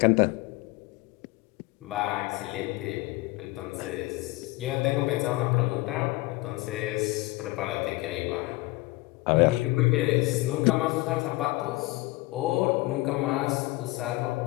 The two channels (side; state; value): right; quieter; 20.9 dB